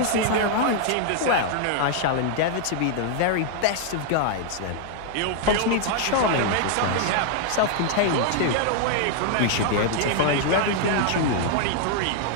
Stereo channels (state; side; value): different; both; correlation 0.00